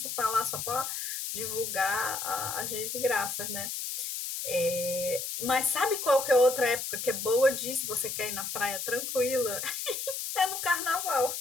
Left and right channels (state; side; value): noise; left; hiss, 4 dB below the sound